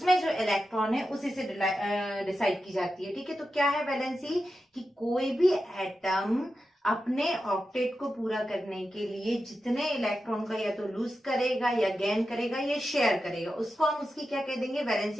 जो इलेक्ट्रॉन है उसी से डिसाइड की जाती है। ठीक है, तो क्या है वैलेंसी, कि कोई भी एटम अपने ऑक्टेट को पूरा करने के लिए जितने इलेक्ट्रॉन का या तो लूज करेगा या गेन करेगा या शेयर करेगा, उसको हम उसकी क्या कह देंगे,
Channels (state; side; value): normal; both; correlation 0.91